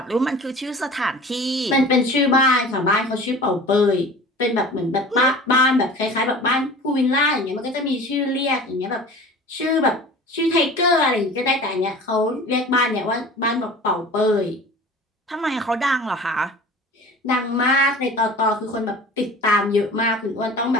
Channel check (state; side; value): normal; both; correlation 0.41